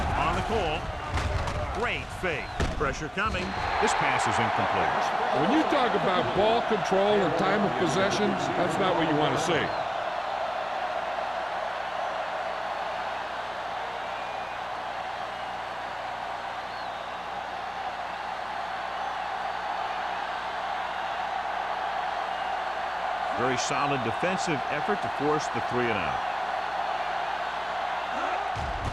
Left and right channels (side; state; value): both; identical; correlation 1.00